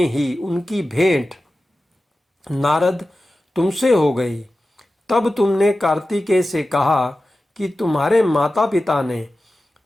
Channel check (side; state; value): both; normal; correlation 0.94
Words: ही उनकी भेंट नारद तुमसे हो गई। तब तुमने कार्तिकेय से कहा कि तुम्हारे माता पिता ने